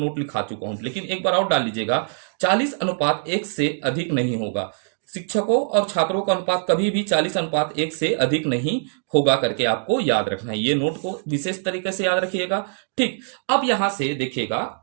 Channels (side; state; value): left; silent; digital silence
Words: लिखा चुका हूं, लेकिन एक बार और डाल लीजिएगा, 40:1 से अधिक नहीं होगा। शिक्षकों और छात्रों का अनुपात कभी भी 40:1 से अधिक नहीं होगा करके आपको याद रखना है। ये नोट को विशेष तरीके से याद रखिएगा। ठीक, अब यहां से देखिएगा